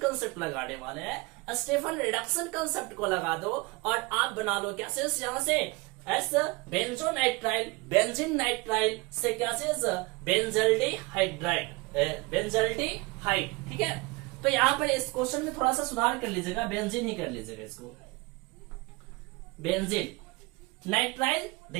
लगाने वाले हैं। स्टीफन रिडक्शन कंसेप्ट को लगा दो और आप बना लो क्या चीज, यहां से एस बेंजोनाइट्राइल, बेंजीन नाइट्राइल से क्या चीज, बेंजल्डेहाइड, ठीक है। तो यहाँ पर इस क्वेश्चन में थोड़ा सा सुधार कर लीजिएगा, बेंजीन ही कर लीजिएगा इसको, बेंजीन नाइट्राइल।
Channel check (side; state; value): left; quieter; 24.8 dB